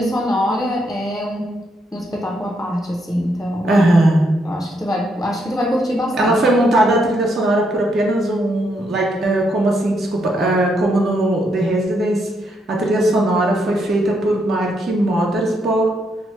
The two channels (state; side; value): normal; both; correlation 0.77